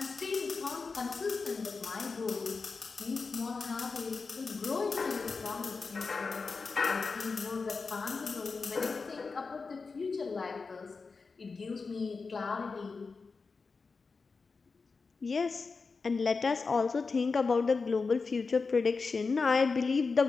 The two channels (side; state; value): right; quieter; 4.5 dB